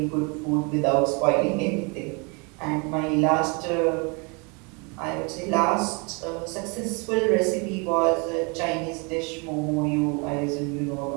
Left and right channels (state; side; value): quieter; left; 31.7 dB